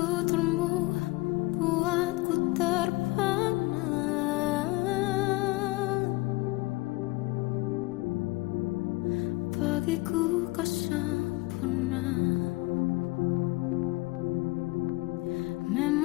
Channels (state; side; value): quieter; right; 22.2 dB